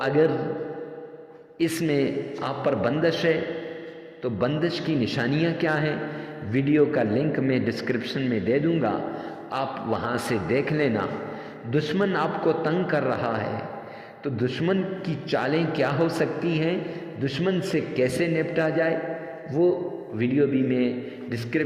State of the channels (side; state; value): both; identical; correlation 1.00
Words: اس میں آپ پر بندش ہے تو بندش کی نشانیاں کیا ہیں؟ ویڈیو کا لنک میں ڈسکرپشن میں دے دوں گا، آپ وہاں سے دیکھ لینا۔ دشمن آپ کو تنگ کر رہا ہے تو دشمن کی چالیں کیا ہو سکتی ہیں، دشمن سے کیسے نپٹا جائے، وہ ویڈیو بھی میں